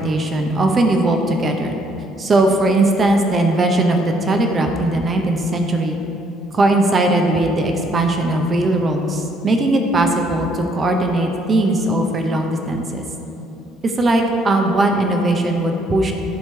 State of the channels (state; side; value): normal; both; correlation 0.69